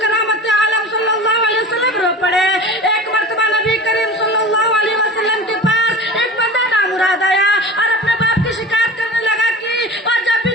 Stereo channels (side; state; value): both; normal; correlation 0.36